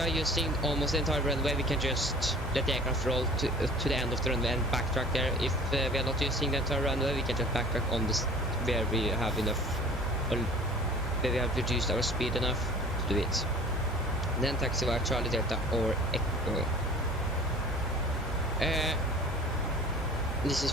using almost the entire runway, we can just let the aircraft roll to the end of the runway and backtrack there. If we are not using the entire runway, we can just backtrack on this where we have enough, or where we have reduced our speed enough to do it. Then taxi via Charlie Delta or Echo. This is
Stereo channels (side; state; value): both; normal; correlation 0.45